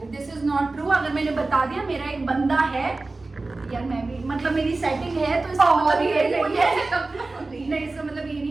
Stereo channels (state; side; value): quieter; left; 3.4 dB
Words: this is not true. अगर मैंने बता दिया मेरा एक बंदा है यार, मैं भी मतलब मेरी सेटिंग है तो इसका मतलब ये नहीं है। नहीं, इसका मतलब ये